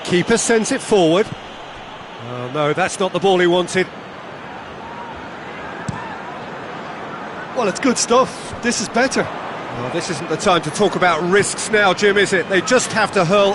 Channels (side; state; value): both; identical; correlation 1.00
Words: Keeper sends it forward. Oh no, that's not the ball he wanted. Well, it's good stuff. This is better. Well, this isn't the time to talk about risks now, Jim, is it? They just have to